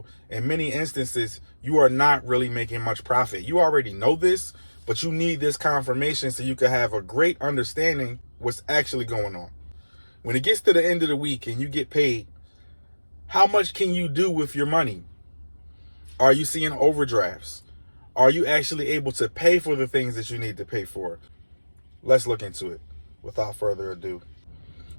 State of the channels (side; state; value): both; inverted; correlation -1.00